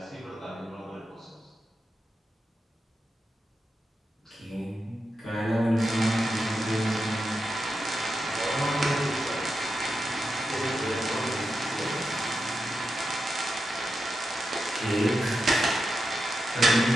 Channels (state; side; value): normal; both; correlation 0.88